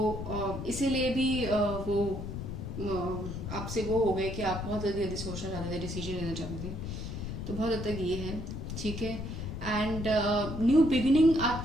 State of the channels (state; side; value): noise; left; rumble, 6 dB below the sound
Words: इसीलिए भी वो आपसे वो हो गए कि आप बहुत जल्दी जल्दी सोचना चाहते थे, डिसीजन लेना चाहते थे, तो बहुत हद तक ये है, ठीक है। एंड न्यू बिगिनिंग